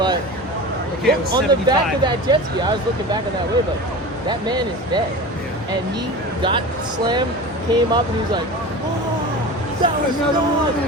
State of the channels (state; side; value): normal; both; correlation 0.32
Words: Okay, it was on the back 75. of that jet ski, I was looking back on that wave like, that man is dead. And he got slammed, came up, and he was like, oh, that was Another nuts. one.